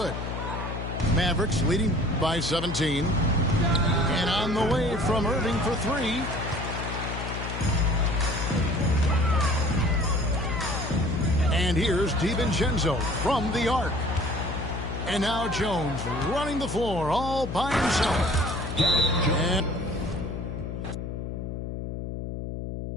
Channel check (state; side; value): noise; left; hum, 6 dB below the sound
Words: Mavericks leading by 17. And on the way from Irving for 3. And here's DiVincenzo from the arc. And now Jones running the floor all by himself. And